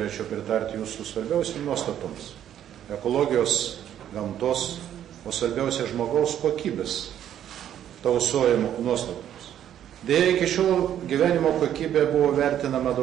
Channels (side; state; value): left; quieter; 10.6 dB